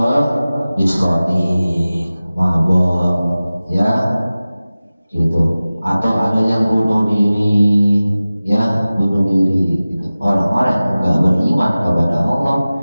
diskotik, mabok, ya, gitu. Atau ada yang bunuh diri, ya, bunuh diri, gitu. Orang-orang yang gak beriman kepada Allah,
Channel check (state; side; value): inverted; both; correlation -0.97